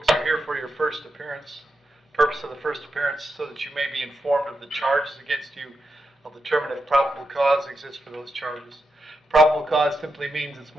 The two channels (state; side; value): normal; both; correlation 0.86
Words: are here for your first appearance. Purpose of the first appearance so that you may be informed of the charges against you. I'll determine if probable cause exists for those charges. Probable cause simply means it's